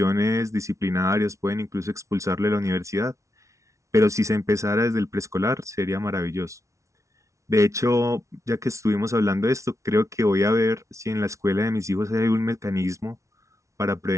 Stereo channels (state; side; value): late; left; 0.14 ms